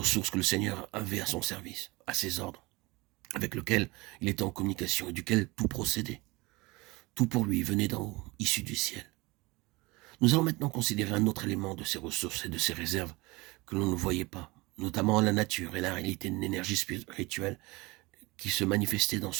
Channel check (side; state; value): left; quieter; 23.3 dB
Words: que le Seigneur avait à son service, à ses ordres, avec lequel il était en communication et duquel tout procédait. Tout pour lui venait d'en haut, issu du ciel. Nous allons maintenant considérer un autre élément de ces ressources et de ces réserves que l'on ne voyait pas, notamment la nature et la réalité d'une énergie spirituelle qui se manifestait dans